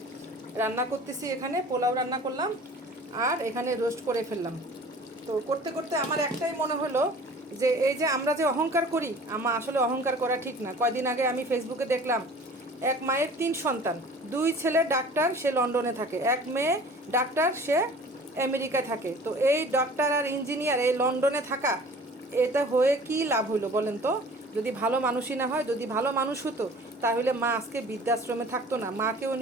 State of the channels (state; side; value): normal; both; correlation 0.45